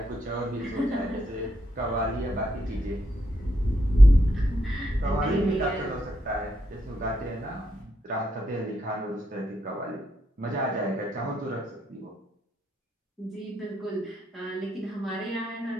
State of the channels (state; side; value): normal; both; correlation 0.79